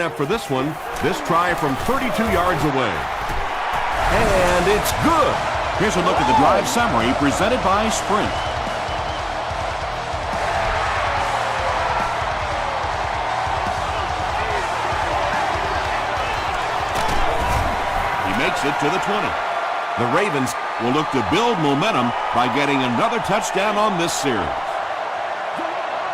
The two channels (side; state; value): both; identical; correlation 1.00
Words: up for this one. This try from 32 yards away. And it's good. Here's a look at the drive summary presented by Sprint. He makes it to the 20. The Ravens will look to build momentum by getting another touchdown on this series.